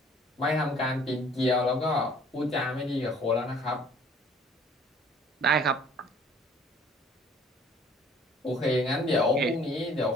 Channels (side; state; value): both; normal; correlation 0.55